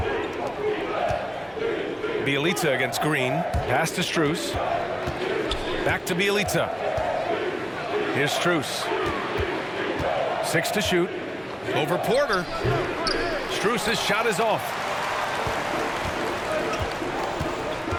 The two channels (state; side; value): identical; both; correlation 1.00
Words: Bjelica against Green. Pass to Strus. Back to Bjelica. Here's Strus. 6 to shoot. Over Porter. Strus's shot is off.